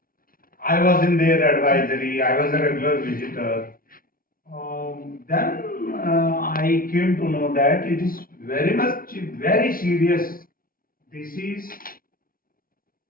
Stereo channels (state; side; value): late; right; 0.42 ms